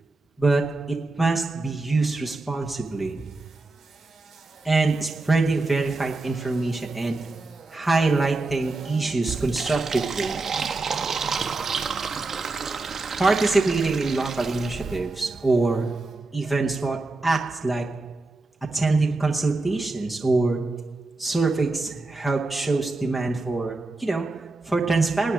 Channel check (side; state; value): left; quieter; 3.2 dB